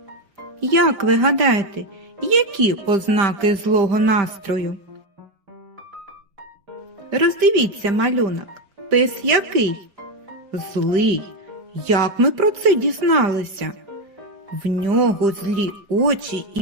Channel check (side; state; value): left; late; 5.1 ms